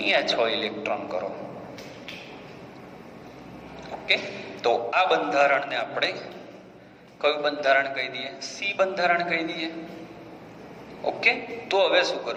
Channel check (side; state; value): both; identical; correlation 1.00